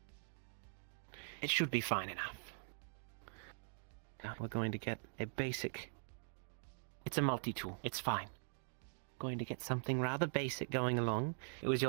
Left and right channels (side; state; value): left; silent; digital silence